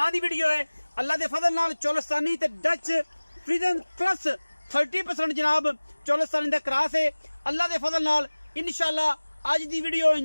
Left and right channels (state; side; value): inverted; both; correlation -1.00